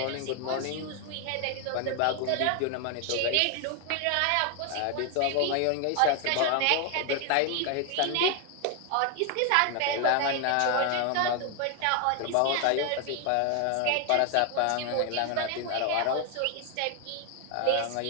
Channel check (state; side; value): different; both; correlation 0.00